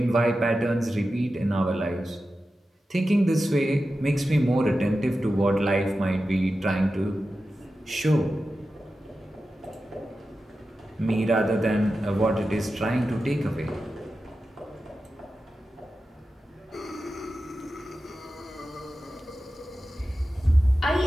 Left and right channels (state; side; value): normal; both; correlation 0.92